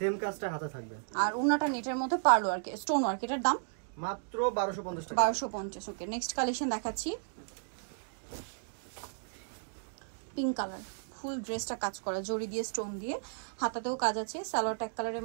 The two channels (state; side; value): silent; left; digital silence